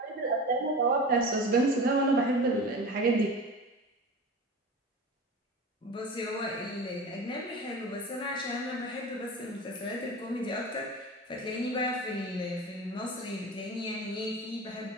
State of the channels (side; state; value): both; normal; correlation 0.32